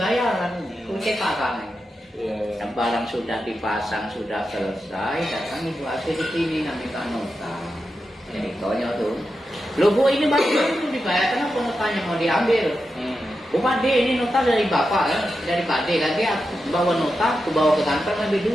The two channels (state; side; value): normal; both; correlation 0.89